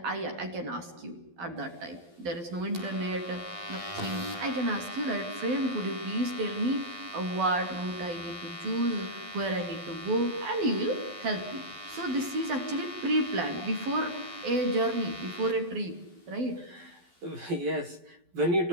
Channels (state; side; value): late; left; 12 ms